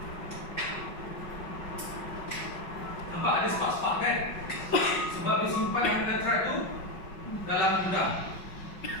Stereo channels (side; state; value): right; late; 5.4 ms